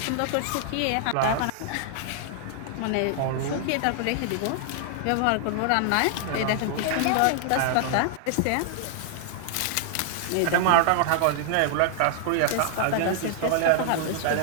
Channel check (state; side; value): different; both; correlation -0.01